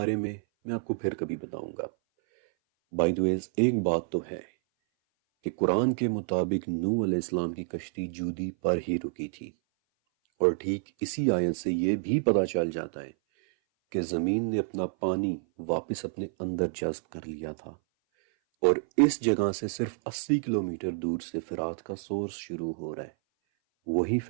میں آپ کو پھر کبھی بتاؤں گا. بائی دی وے ایک بات تو ہے کہ قرآن کے مطابق نوح علیہ السلام کی کشتی جودی پر ہی رکی تھی، اور ٹھیک اسی آیت سے یہ بھی پتہ چل جاتا ہے کہ زمین نے اپنا پانی واپس اپنے اندر جذب کر لیا تھا. اور اس جگہ سے صرف 80 کلومیٹر دور سے فرات کا سورس شروع ہو رہا ہے، وہی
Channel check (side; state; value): left; silent; 57 dB below the other